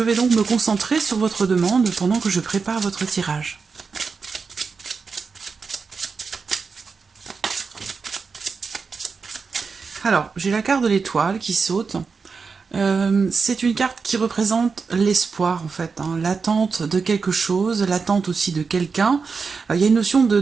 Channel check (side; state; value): left; quieter; 5.1 dB